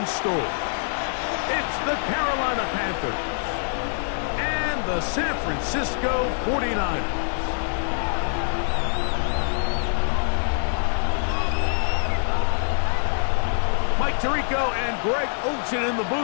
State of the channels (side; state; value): right; silent; digital silence